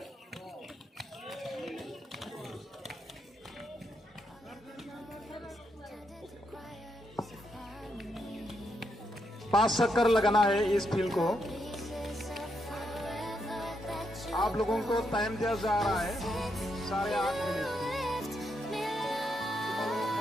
पांच चक्कर लगाना है इस field को। आप लोगों को टाइम दिया जा रहा है 8.5 मिनट।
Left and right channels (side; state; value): both; normal; correlation 0.80